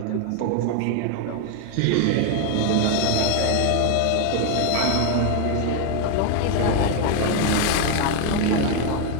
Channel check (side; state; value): both; different; correlation 0.01